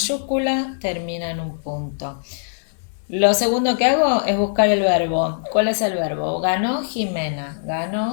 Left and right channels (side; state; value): right; silent; digital silence